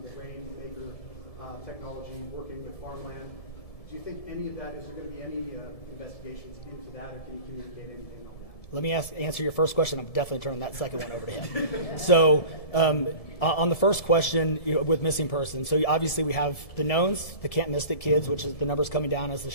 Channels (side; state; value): right; late; 1.7 ms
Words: the rainmaker technology, working with farmland. Do you think any of that, is there going to be any investigations into that, or can you communicate anything on that? Let me answer your first question. I'm definitely turning that second one over to him. So on the first question, with missing persons, so obviously we have the knowns, the can't miss it kids, which is the numbers coming down as the